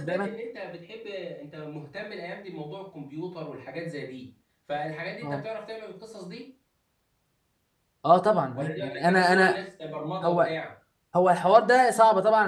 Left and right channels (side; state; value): both; identical; correlation 1.00